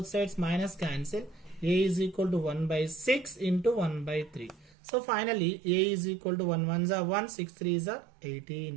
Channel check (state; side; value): drops out; left; at 4.8 s